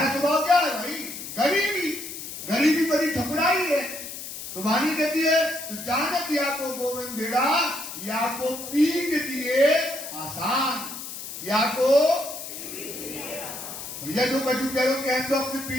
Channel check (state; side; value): noise; left; hiss, 9 dB below the sound